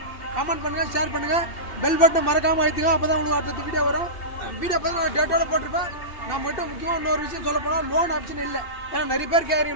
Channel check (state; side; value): late; right; 2.6 ms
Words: கமெண்ட் பண்ணுங்கள், ஷேர் பண்ணுங்கள், பெல் பட்டன் மறக்காமல் அழுத்துங்க. அப்போ தான் உங்களுக்கு அடுத்த வீடியோ வரும். வீடியோ பார்த்து டேட்டோட போட்டிருப்பேன். நான் மட்டும் முக்கியமாக இன்னொரு விஷயம் சொல்ல போனால் லோன் ஆப்ஷன் இல்லை. ஏன்னா நிறைய பேர்